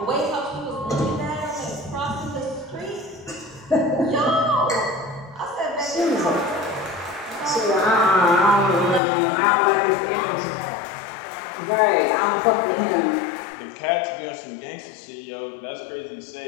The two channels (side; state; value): right; drops out; at 9.0 s